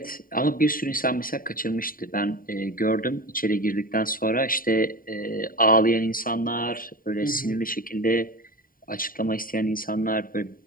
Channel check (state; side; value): late; right; 0.41 ms